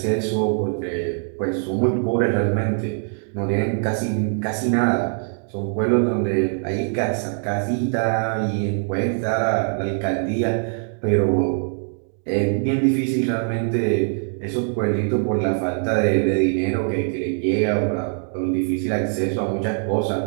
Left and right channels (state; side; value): silent; left; 59 dB below the other